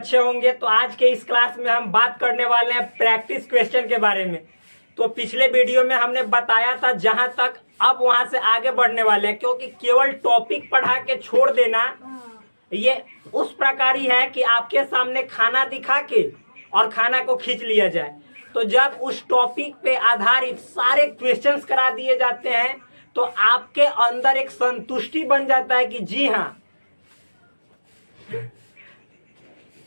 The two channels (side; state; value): both; inverted; correlation -1.00